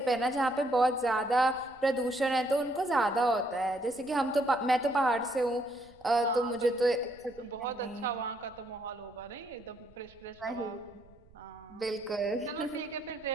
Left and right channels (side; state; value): right; noise; rumble, 27 dB below the sound